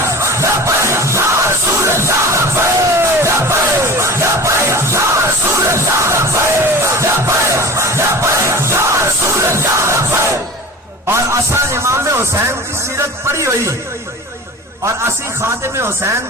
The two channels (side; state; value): both; normal; correlation 0.36